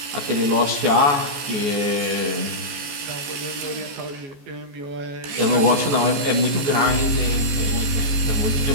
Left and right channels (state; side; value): late; left; 14 ms